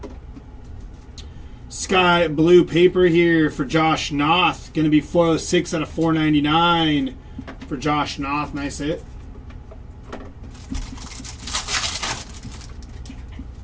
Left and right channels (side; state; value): both; identical; correlation 1.00